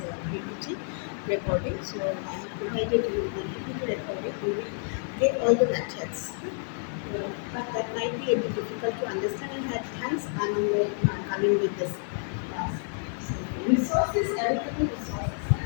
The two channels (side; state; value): right; silent; 58 dB below the other